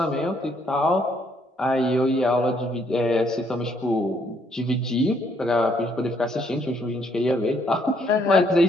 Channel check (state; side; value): normal; both; correlation 0.70